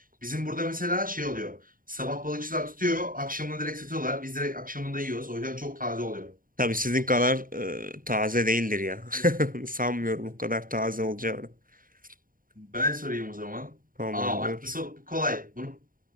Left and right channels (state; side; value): late; left; 0.41 ms